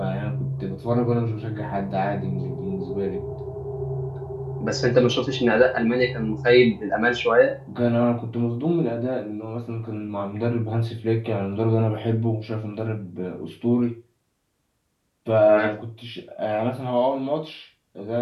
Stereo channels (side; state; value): both; identical; correlation 1.00